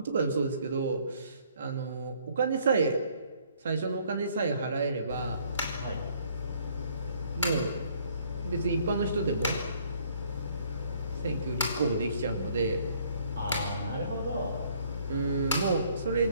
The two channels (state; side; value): inverted; both; correlation -0.63